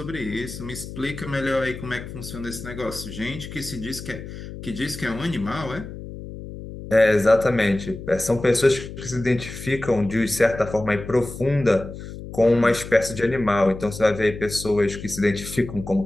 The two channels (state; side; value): noise; left; hum, 11 dB below the sound